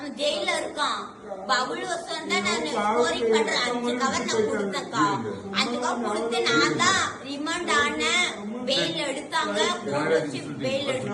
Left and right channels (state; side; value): identical; both; correlation 1.00